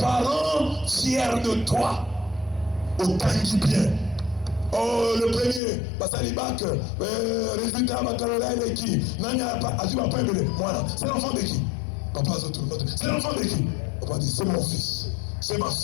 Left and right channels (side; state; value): right; drops out; at 5.6 s